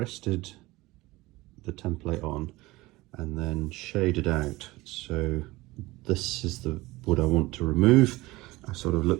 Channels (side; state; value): left; quieter; 20.1 dB